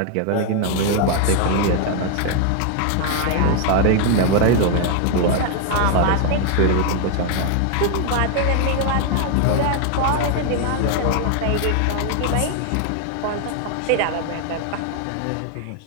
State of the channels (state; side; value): different; both; correlation 0.00